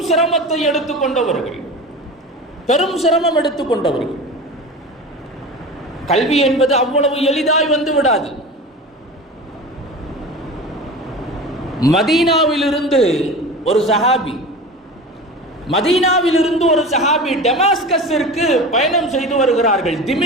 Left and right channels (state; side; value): normal; both; correlation 0.32